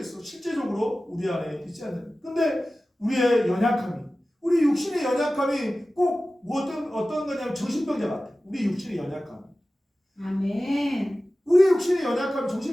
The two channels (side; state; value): both; normal; correlation 0.96